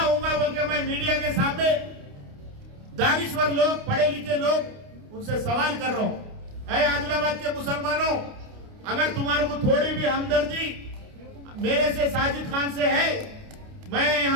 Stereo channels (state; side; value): late; left; 29 ms